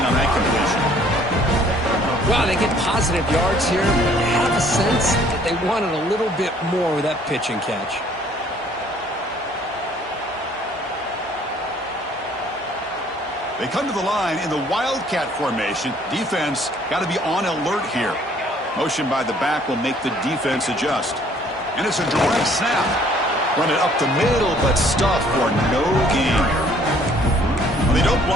on that completion. Wow, they get positive yards here, but you have a sense that they wanted a little bit more with that pitch and catch. They come to the line in the Wildcat formation. Defense got to be on alert here. Motion by the back will make the defense adjust. And it's a direct snap. Run it up the middle, but stuffed for no gain. They don't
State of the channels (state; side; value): normal; both; correlation 0.59